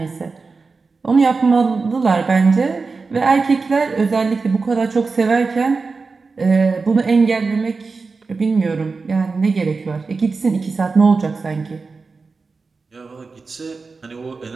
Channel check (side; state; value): left; quieter; 4.3 dB